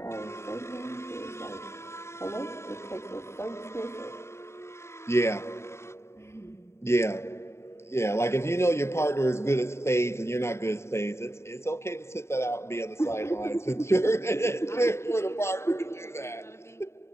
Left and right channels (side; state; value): right; late; 0.13 ms